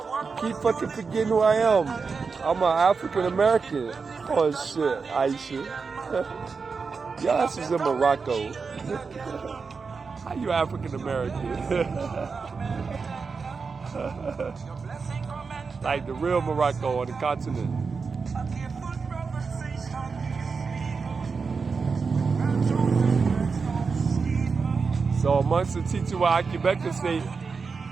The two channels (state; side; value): quieter; left; 5.0 dB